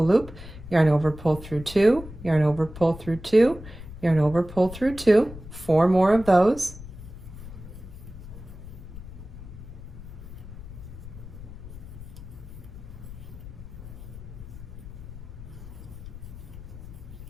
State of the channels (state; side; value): noise; left; rumble, 13 dB below the sound